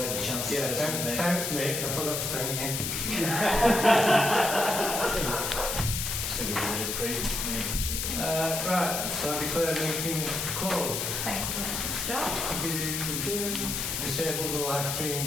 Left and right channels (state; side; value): noise; left; hiss, 2 dB below the sound